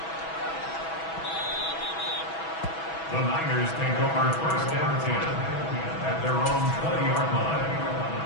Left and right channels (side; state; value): right; late; 6.1 ms